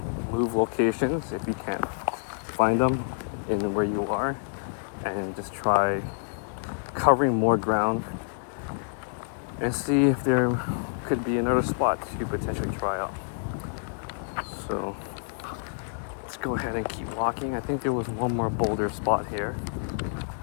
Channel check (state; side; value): silent; right; 59 dB below the other